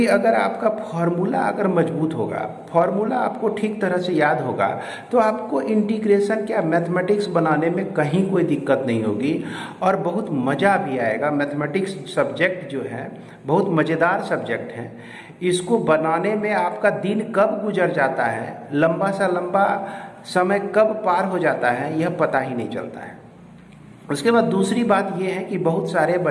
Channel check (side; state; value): both; identical; correlation 1.00